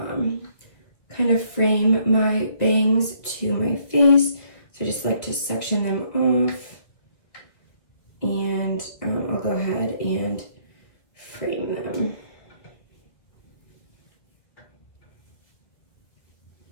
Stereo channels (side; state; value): right; late; 1.7 ms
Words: kind of frame my bangs to my face. So I just like to section them off, and I'll go ahead and frame them.